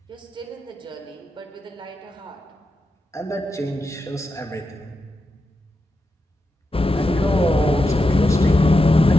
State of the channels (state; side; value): normal; both; correlation 0.87